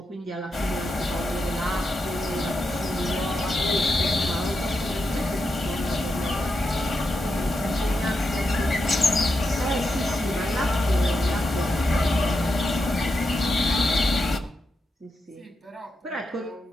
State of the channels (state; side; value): normal; both; correlation 0.86